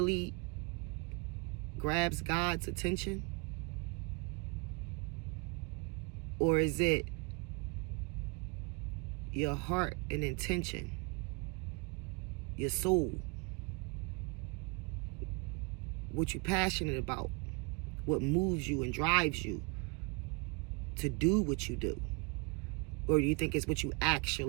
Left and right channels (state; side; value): quieter; left; 30.3 dB